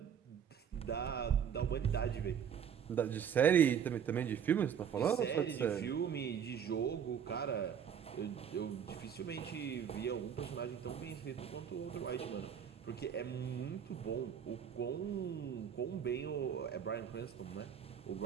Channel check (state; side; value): quieter; left; 8.1 dB